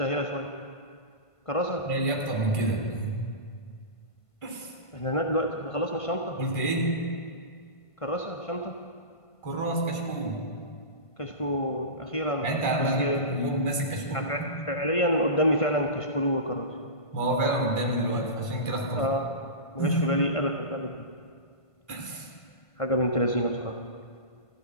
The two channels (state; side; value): late; right; 1.5 ms